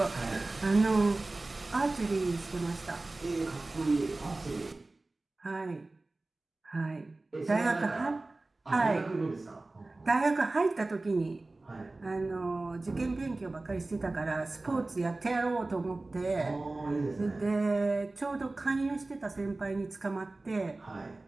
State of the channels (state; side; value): quieter; left; 3.1 dB